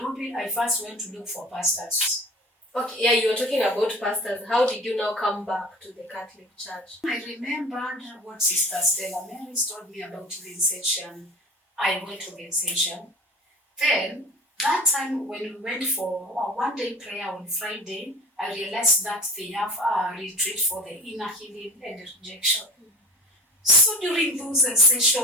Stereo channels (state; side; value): normal; both; correlation 0.39